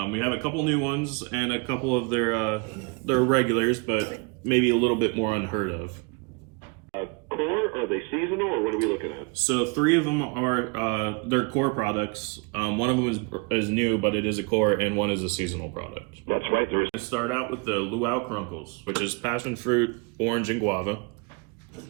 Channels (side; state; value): left; quieter; 31.6 dB